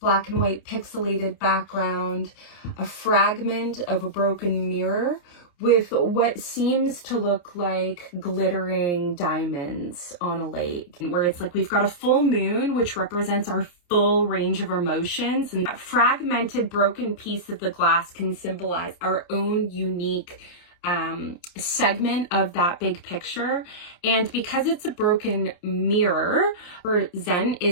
black and white pixelated background, a fragment of a broken mirror with what seems to look like glittering diamonds on a lake, where it's like we've got a full moon, which represents our full range of emotions, and that fragmented broken piece of the glass can symbolize our own unique segment of that big picture. And because it's a broken mirror, for Zen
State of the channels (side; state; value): right; late; 28 ms